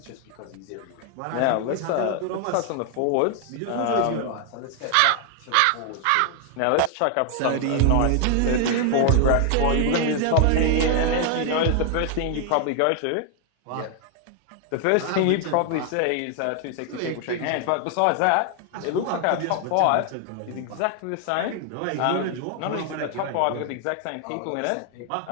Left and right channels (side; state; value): both; different; correlation 0.00